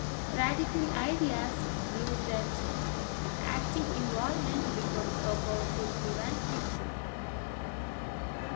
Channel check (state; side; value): silent; right; 54 dB below the other